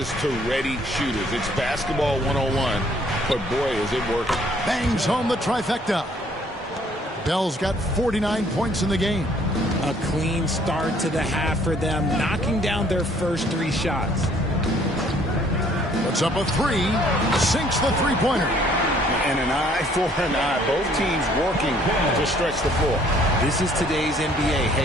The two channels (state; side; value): normal; both; correlation 0.61